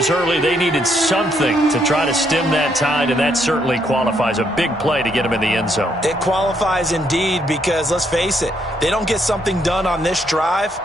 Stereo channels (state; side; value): normal; both; correlation 0.73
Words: early. They needed something to try to stem that tide, and that certainly qualifies. A big play to get him in the end zone. It qualifies indeed because, let's face it, they don't get something done on this drive,